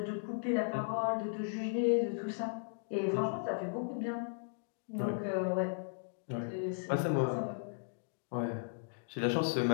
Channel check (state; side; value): silent; right; digital silence